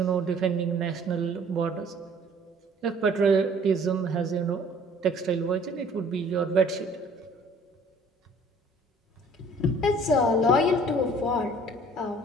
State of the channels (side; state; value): both; normal; correlation 0.54